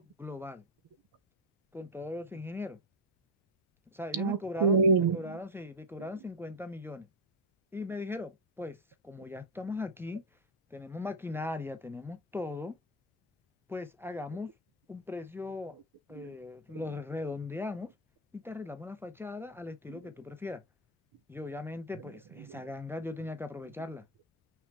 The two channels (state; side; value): normal; both; correlation 0.00